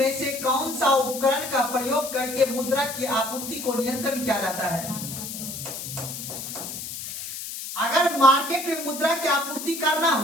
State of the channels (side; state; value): left; noise; hiss, 8 dB below the sound